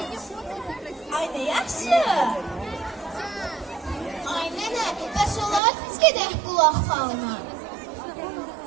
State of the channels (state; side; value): drops out; left; at 5.6 s